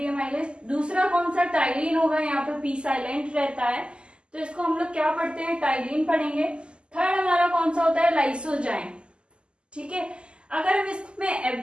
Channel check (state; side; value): late; left; 0.050 ms